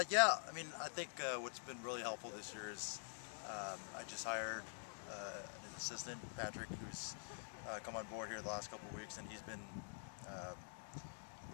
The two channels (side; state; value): right; silent; digital silence